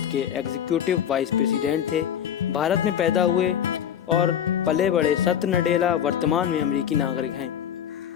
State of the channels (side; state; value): right; quieter; 9.3 dB